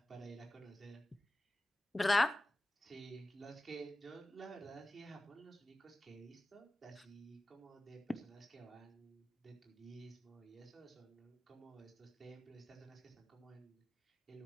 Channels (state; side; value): normal; both; correlation 0.96